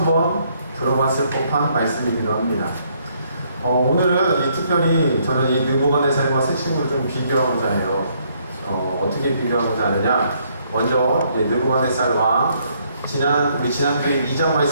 번 들어봤을 법한 말씀이기도 합니다. 오늘은 특별히 저는 이 느부갓네살과 새 친구를 좀 비교하고자 해요. 어떻게 비교하고자 하느냐? 먼저 느부갓네살 왕 우리 지난주에 2장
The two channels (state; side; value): inverted; both; correlation -0.69